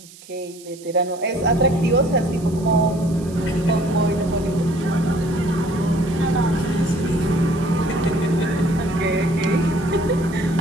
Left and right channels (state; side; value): noise; right; hiss, 21 dB below the sound